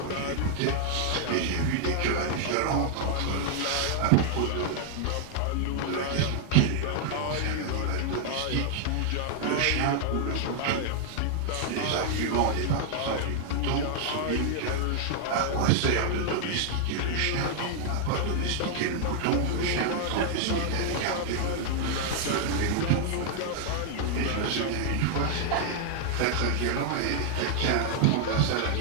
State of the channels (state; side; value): different; both; correlation 0.00